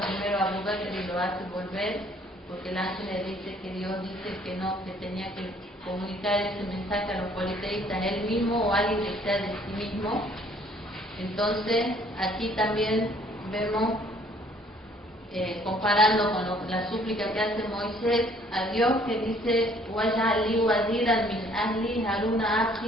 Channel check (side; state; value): both; normal; correlation 0.60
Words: primero a Abu Bakr y lo hace volver? porque el ángel le dice que Dios dice que no, que tenía que comunicar ese mensaje a los politeístas él mismo o alguien que sea de sí mismo. Entonces aquí también vemos, comparando con la súplica que hace Moisés a Dios, que dice "Waj'alni waziran min ahli Haruna